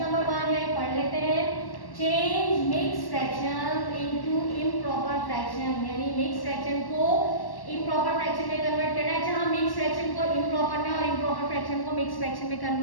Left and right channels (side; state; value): right; late; 1.1 ms